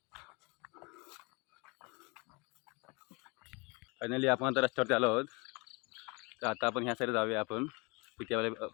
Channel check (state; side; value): quieter; right; 29.0 dB